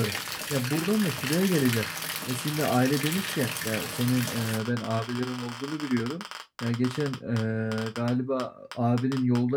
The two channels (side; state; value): both; identical; correlation 1.00